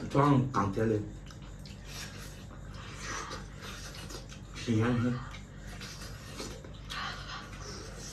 早上刚摘的，新鲜很。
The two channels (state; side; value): identical; both; correlation 1.00